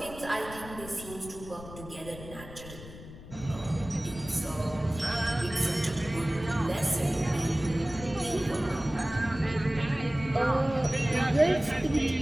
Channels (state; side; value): noise; left; rumble, 14 dB below the sound